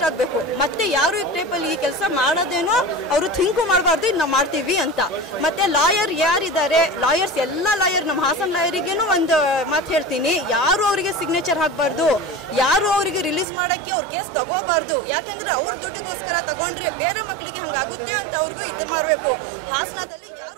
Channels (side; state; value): left; drops out; at 13.5 s